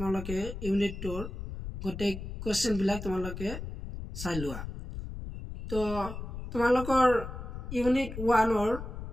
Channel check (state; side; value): noise; left; rumble, 8 dB below the sound